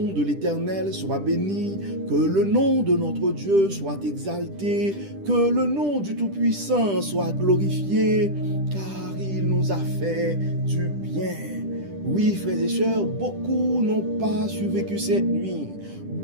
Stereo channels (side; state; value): left; late; 10 ms